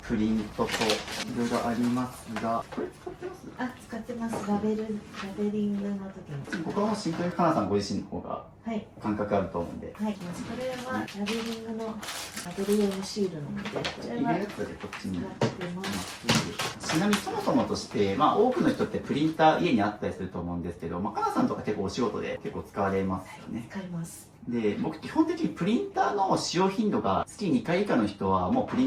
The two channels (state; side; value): identical; both; correlation 1.00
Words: プリントといろいろありますが、これ使ってます？あ、使ってます。ラベリングの時に。ここはもうシンプルにかなさんご自身の方がはい。感覚あると思うんで、はい。これはラベリングのラベル用のシールなので、こちらは入れるやつでこっちに。使ってます。ちなみにそもそもとして、多くの人ってプリンター家にあったりすると思うんですけど、かなさんとか結構お仕事で結構使われますよね。使います。で、僕基本的にプリンターの使用頻度が月2回以下の人はもうプリ